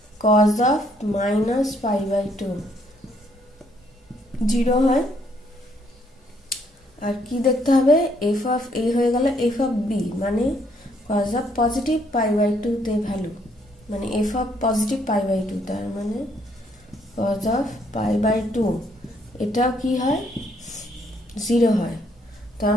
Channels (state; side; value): normal; both; correlation 0.69